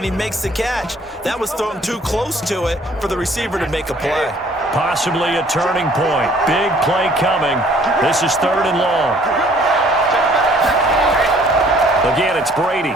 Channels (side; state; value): both; normal; correlation 0.58